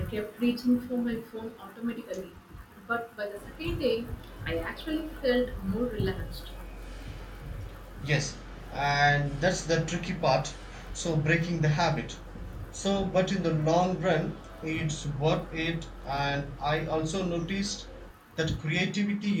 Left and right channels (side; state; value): both; identical; correlation 1.00